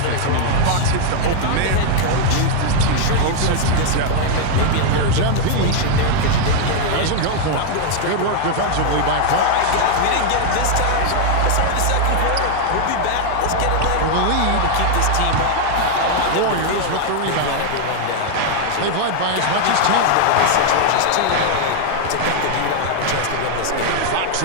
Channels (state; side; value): different; both; correlation 0.00